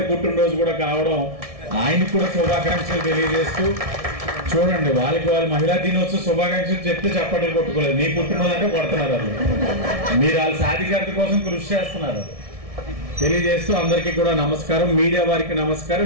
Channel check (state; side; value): late; left; 1.6 ms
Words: పుట్టినరోజు కూడా కావడం, ఆయనకు కూడా శుభాకాంక్షలు తెలియజేస్తూ, చూడండి వాళ్ళకి వాళ్ళు మహిళా దినోత్సవం శుభాకాంక్షలు చెప్తే చప్పట్లు కొట్టుకోలేదు. మీ పుట్టినరోజు అంటే కొడుతున్నారు వాళ్ళు, మీరు వాళ్ళ సాధికారత కోసం కృషి చేస్తున్నారు తెలియజేస్తూ అందరికీ కూడా నమస్కారం. మీడియా వారికి